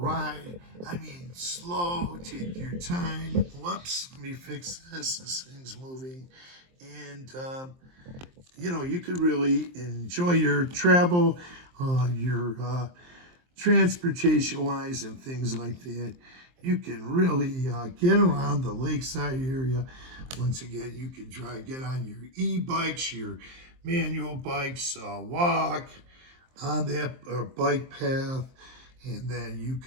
I mean, slow, take your time. Whoops, let me fix this. This thing's moving. And, you could really enjoy your travel, your transportation-wise and things like that. You can really get around the lakeside area. Once again, you can get on your e-bikes, your manual bikes, walk on that bike path, and then you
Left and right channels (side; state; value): left; late; 23 ms